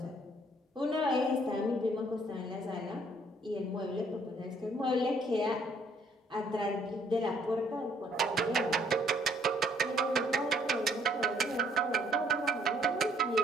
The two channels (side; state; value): both; normal; correlation 0.64